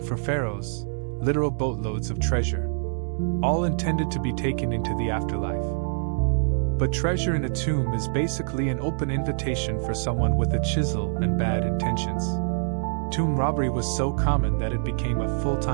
for pharaohs, literal boatloads of treasure. All intended to be taken into the afterlife. But treasure in a tomb is basically an open invitation for someone with a chisel and bad intentions. Tomb robbery was so common that it became a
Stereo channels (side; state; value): left; silent; digital silence